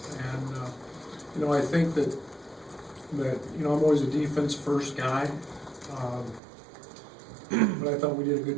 And, you know, I think that you know, I'm always a defense first guy. But I thought we did a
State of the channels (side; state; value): left; drops out; at 6.4 s